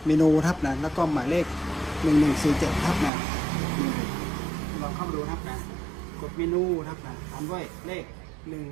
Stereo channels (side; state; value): left; drops out; at 3.1 s